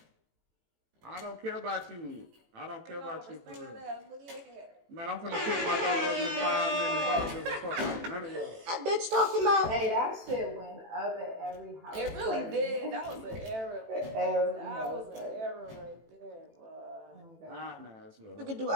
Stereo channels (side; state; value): left; late; 18 ms